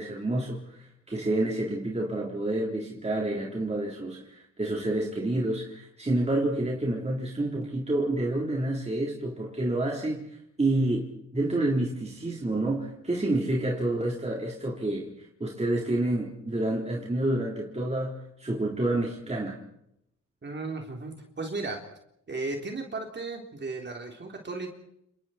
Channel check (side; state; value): both; normal; correlation 0.76